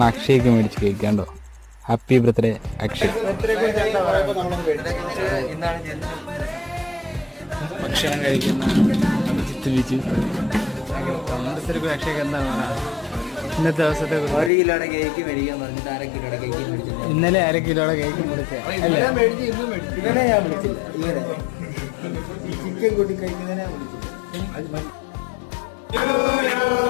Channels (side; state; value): right; drops out; at 14.5 s